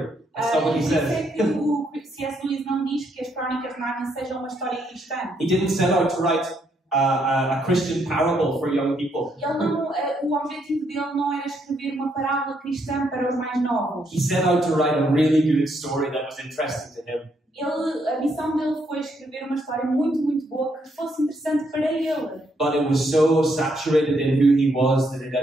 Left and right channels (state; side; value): normal; both; correlation 0.74